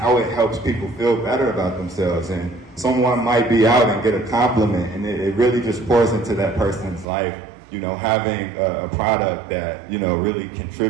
it helps people feel better about themselves. And someone might be out and get a compliment, and it really just pours into that person's life, having a product that, really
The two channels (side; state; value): left; drops out; at 7.1 s